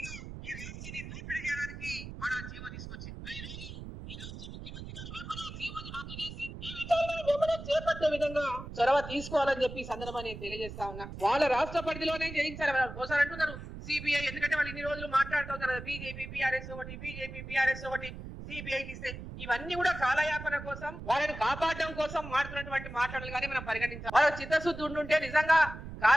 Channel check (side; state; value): right; noise; rumble, 11 dB below the sound